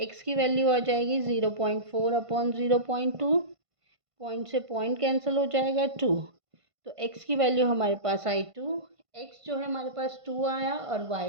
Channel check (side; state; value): left; late; 1.5 ms